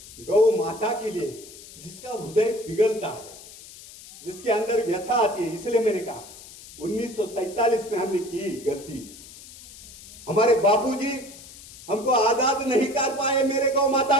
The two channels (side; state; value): left; noise; hiss, 18 dB below the sound